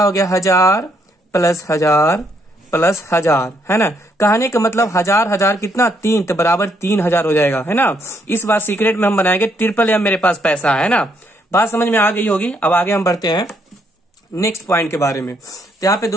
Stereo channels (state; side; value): normal; both; correlation 0.72